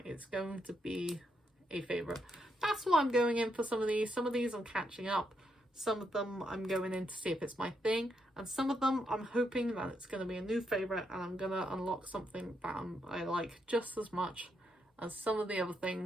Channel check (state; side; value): normal; both; correlation 0.79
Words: it's going to be a favourite. That's why I'm going in for some of these. Some of these I'm catching up. Some of them I'm going in to see if it's my thing. And some of them I'm hoping that it's going to be a new favourite, and I'm going to unlock something that I like just as much as some of the other